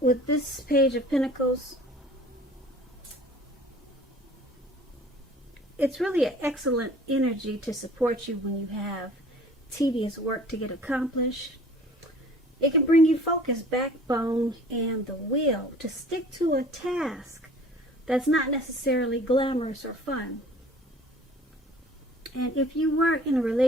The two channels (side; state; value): both; normal; correlation 0.48